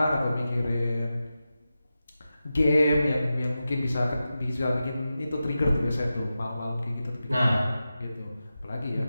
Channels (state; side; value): inverted; both; correlation -0.92